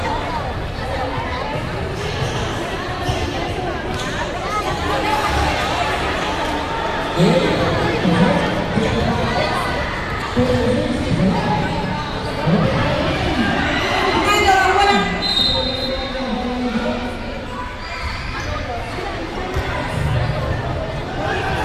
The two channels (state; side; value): identical; both; correlation 1.00